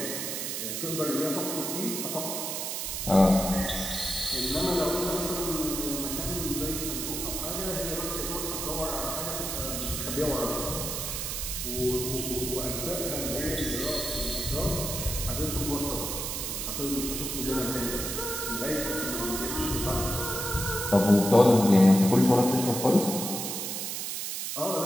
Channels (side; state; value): right; noise; hiss, 3 dB below the sound